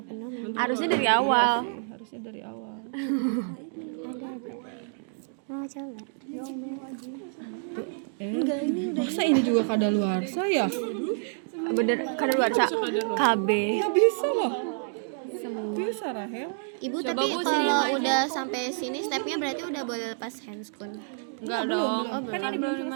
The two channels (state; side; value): silent; left; digital silence